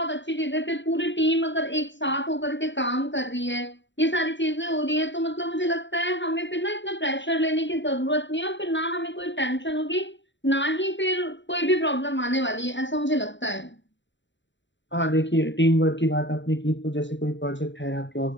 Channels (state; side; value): late; right; 0.54 ms